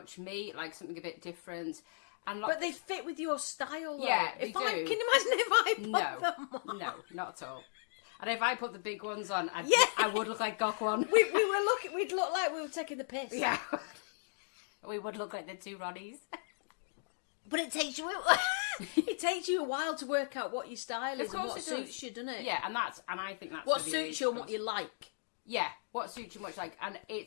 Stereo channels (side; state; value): right; silent; digital silence